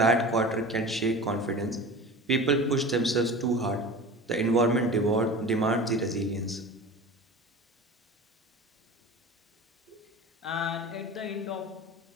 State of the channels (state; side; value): normal; both; correlation 0.35